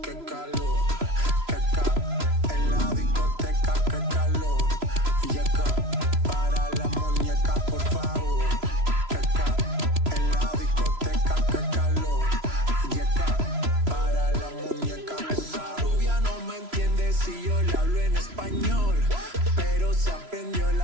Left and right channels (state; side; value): late; left; 3.0 ms